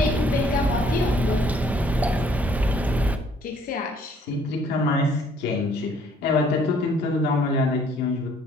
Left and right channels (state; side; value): normal; both; correlation 0.61